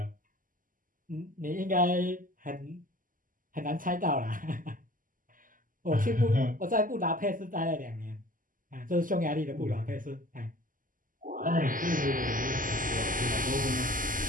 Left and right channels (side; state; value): left; late; 0.39 ms